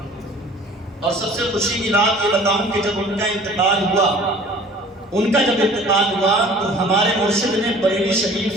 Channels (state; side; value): normal; both; correlation 0.48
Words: اور سب سے خوشی کی بات یہ بتاؤں کہ جب ان کا انتقال ہوا تو ہمارے مرشد نے بریلی